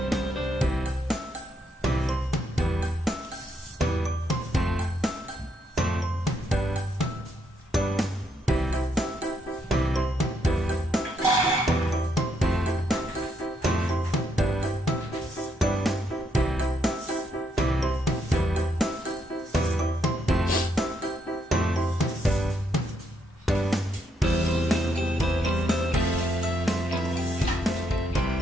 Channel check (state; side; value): normal; both; correlation 0.77